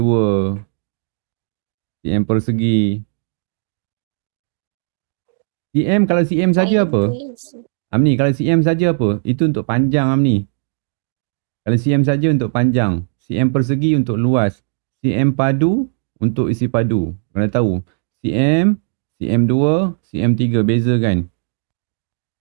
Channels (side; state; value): left; silent; digital silence